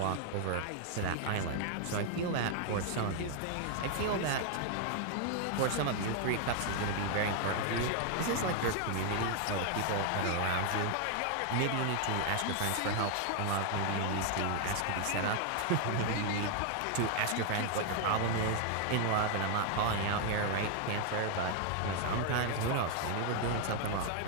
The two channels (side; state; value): both; different; correlation 0.00